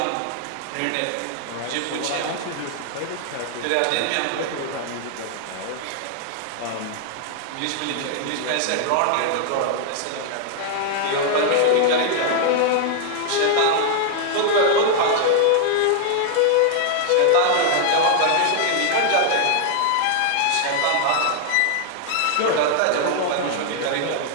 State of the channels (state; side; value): different; both; correlation 0.00